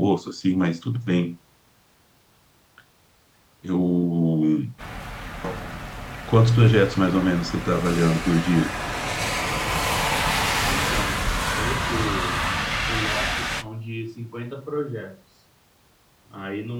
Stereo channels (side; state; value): both; identical; correlation 1.00